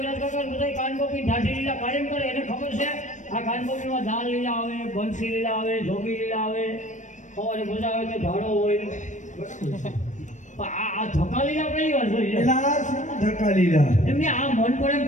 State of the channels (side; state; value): right; late; 0.35 ms